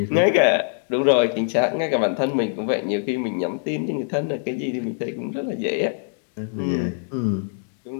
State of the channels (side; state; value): right; silent; digital silence